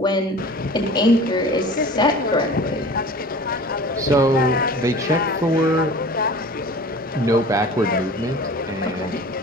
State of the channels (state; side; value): normal; both; correlation 0.41